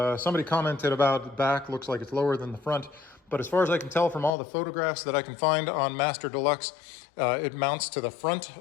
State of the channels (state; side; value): drops out; right; at 4.3 s